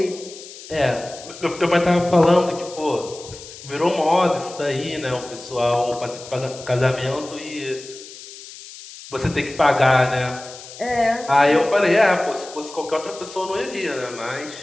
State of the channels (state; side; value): noise; left; hiss, 16 dB below the sound